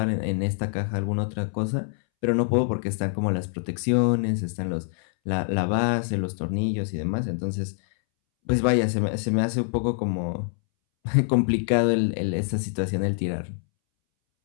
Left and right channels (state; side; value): silent; right; 62 dB below the other